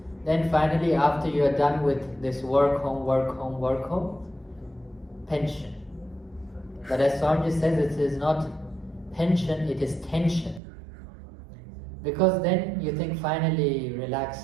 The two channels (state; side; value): drops out; left; at 10.6 s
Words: Then finally, after you are done with this work home, pension. But as Swamiji says, it is not pension, it is tension. Because then you think finally